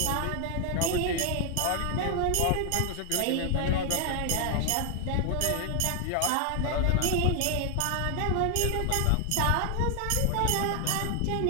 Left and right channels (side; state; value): both; different; correlation 0.00